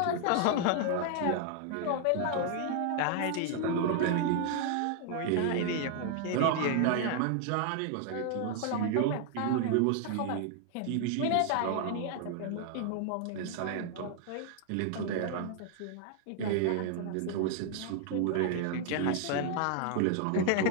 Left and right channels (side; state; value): both; different; correlation 0.00